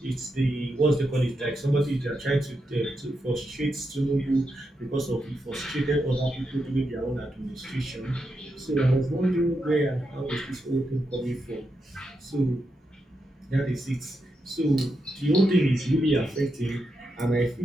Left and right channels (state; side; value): normal; both; correlation 0.85